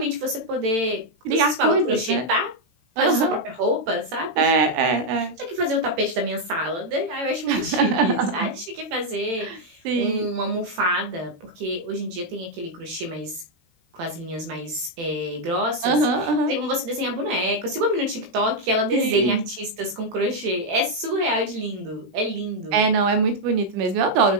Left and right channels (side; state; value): left; late; 18 ms